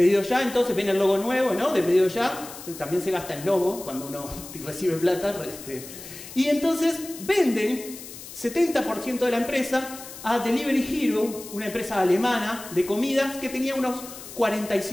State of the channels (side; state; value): left; noise; hiss, 14 dB below the sound